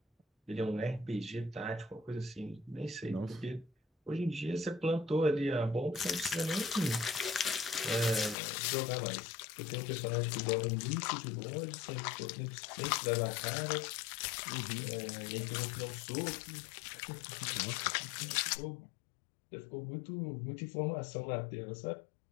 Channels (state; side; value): drops out; right; at 8.3 s